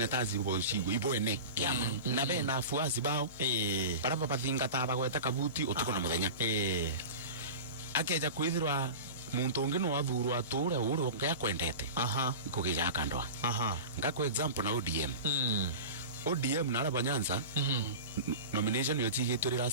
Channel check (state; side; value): inverted; both; correlation -0.31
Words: ibo shigo ibo ene kiama na be na afuasi bao bara bathinga ta bagweta kabuti utuko na muthenya akeja kwithirwa muntu ungi no athurwa ture uru ngaya kwendete ikugija kandwa ngako example na ODM na Araba Nyanza nomination yo tigituri